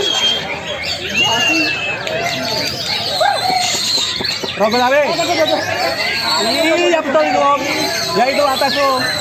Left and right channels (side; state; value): both; identical; correlation 1.00